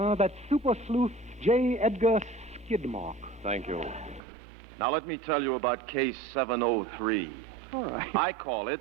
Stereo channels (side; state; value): left; drops out; at 4.2 s